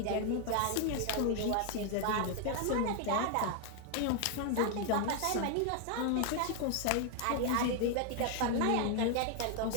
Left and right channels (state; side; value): different; both; correlation 0.00